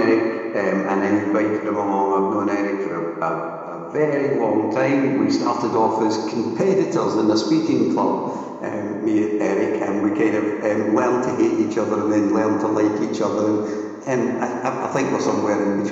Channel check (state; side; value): identical; both; correlation 1.00